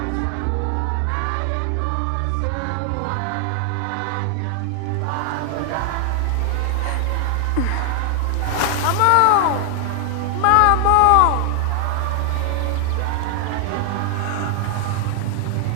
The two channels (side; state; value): both; different; correlation 0.00